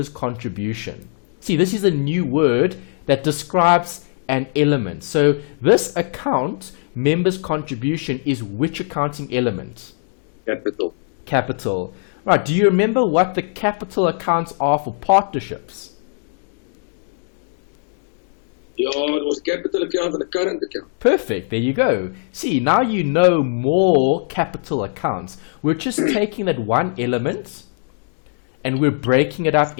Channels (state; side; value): silent; right; digital silence